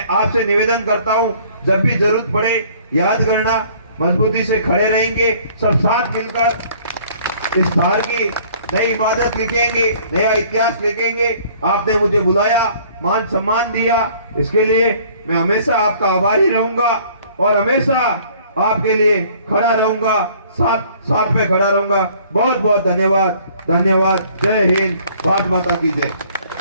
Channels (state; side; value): inverted; both; correlation -0.56